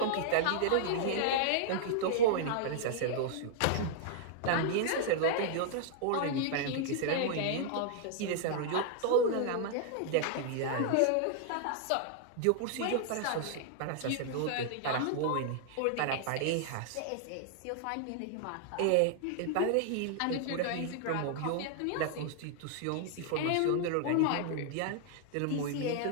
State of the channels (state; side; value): different; both; correlation -0.01